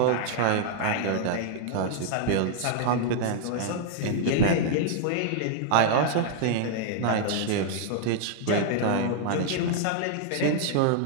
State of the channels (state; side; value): different; both; correlation -0.01